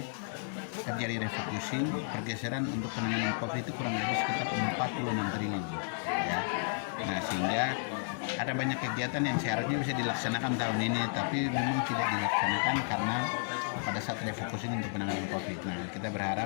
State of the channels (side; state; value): right; silent; digital silence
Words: terjadi refocusing, pergeseran untuk penanganan COVID itu kurang lebih sekitar 46 triliun ya. Nah, sehingga ada banyak kegiatan yang seharusnya bisa dilaksanakan tahun ini tapi memang tidak dilaksanakan karena pada saat refocusing untuk penanganan COVID. Nah, kita